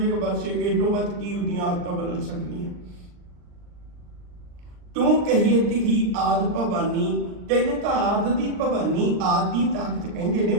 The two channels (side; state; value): left; late; 39 ms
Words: बस ये तो बद की उदियां आदतां बदल सकती। तू कहिए तिही आद भवानी, तेनू तो आद दी भवानी आद दी ताकत कहंदे ने,